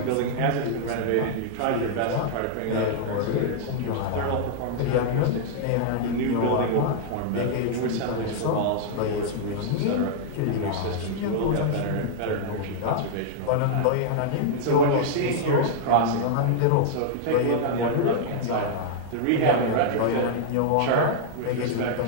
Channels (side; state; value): both; different; correlation -0.01